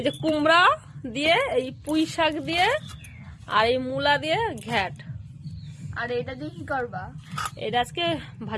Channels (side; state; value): both; identical; correlation 1.00